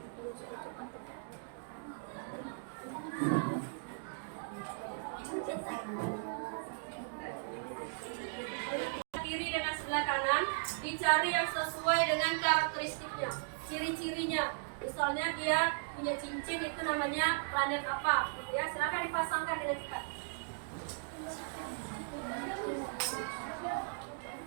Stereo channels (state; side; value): silent; left; digital silence